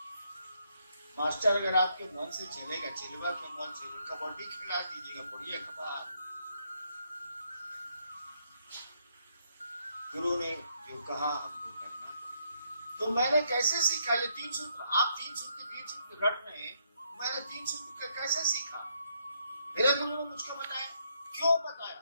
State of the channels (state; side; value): inverted; both; correlation -0.75